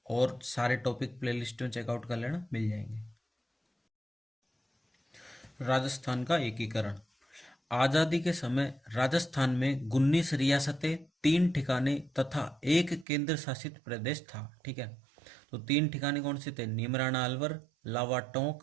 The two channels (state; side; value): drops out; left; at 13.1 s